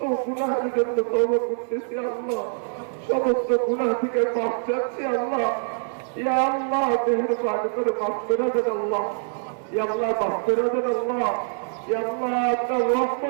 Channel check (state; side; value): silent; left; 62 dB below the other